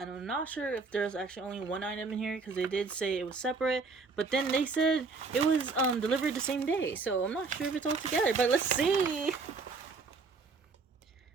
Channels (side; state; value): left; quieter; 4.3 dB